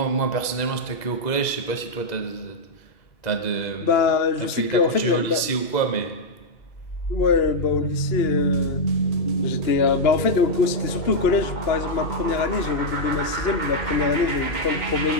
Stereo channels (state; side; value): late; right; 2.0 ms